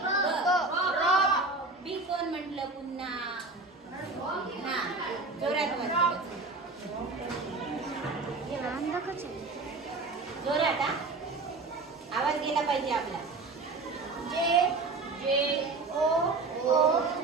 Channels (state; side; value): quieter; left; 3.6 dB